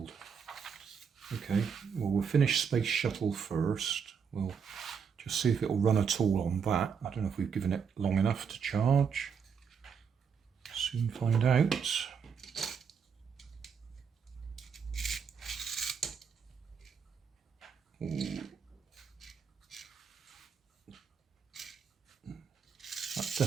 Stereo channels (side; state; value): left; quieter; 6.6 dB